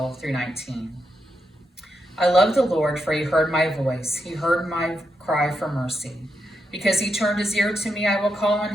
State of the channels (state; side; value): normal; both; correlation 0.84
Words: through 19. I love the Lord, for he heard my voice. He heard my cry for mercy. Because he turned his ear to me, I will call